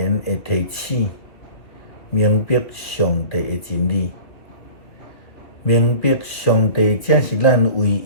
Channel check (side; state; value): right; late; 2.7 ms